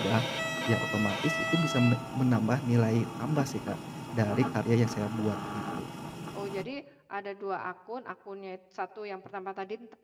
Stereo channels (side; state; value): both; identical; correlation 1.00